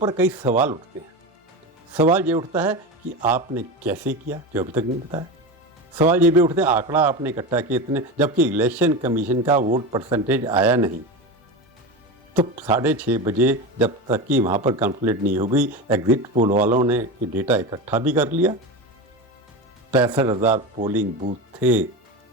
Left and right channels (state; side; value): normal; both; correlation 0.23